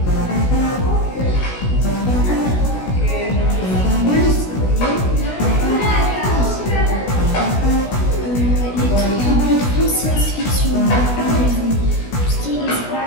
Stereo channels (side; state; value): right; late; 16 ms